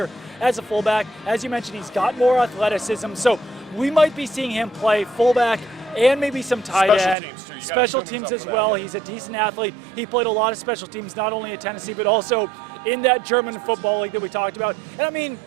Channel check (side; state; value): left; drops out; at 7.2 s